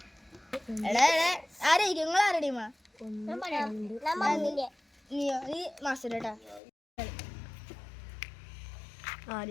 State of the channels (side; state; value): right; drops out; at 6.6 s